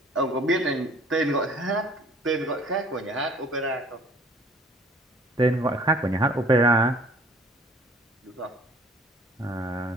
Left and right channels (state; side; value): normal; both; correlation 0.53